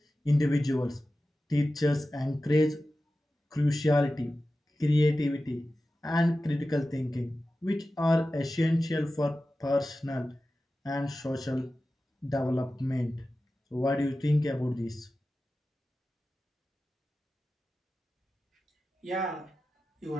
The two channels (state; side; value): normal; both; correlation 0.94